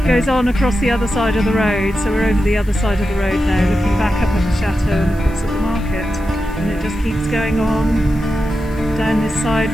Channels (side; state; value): left; noise; hiss, 26 dB below the sound